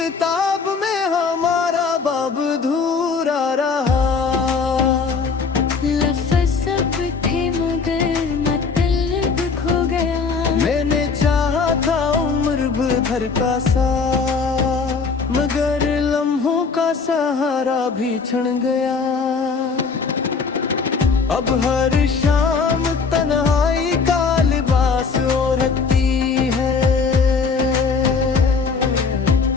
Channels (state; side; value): quieter; right; 5.0 dB